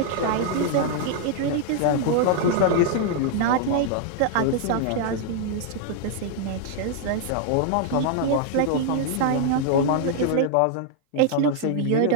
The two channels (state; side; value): different; both; correlation 0.00